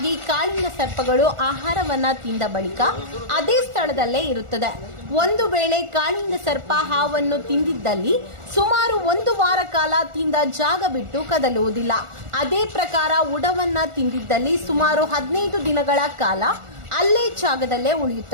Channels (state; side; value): late; left; 1.4 ms